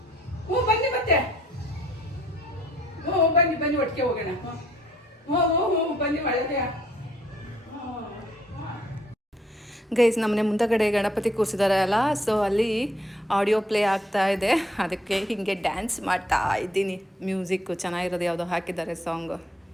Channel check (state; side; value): normal; both; correlation 0.65